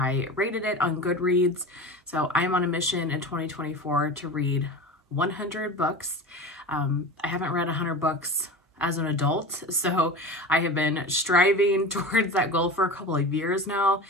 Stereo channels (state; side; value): normal; both; correlation 0.31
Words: rated it on Goodreads. So I'm on a mission in 2024 to read 100 books. I haven't read 100 books as an adult, so I have been striving towards that goal for a couple of years now,